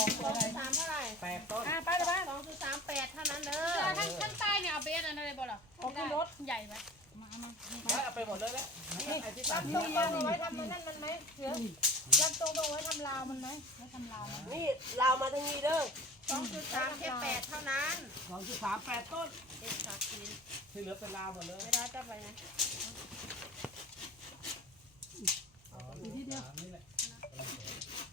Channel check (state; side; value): normal; both; correlation 0.38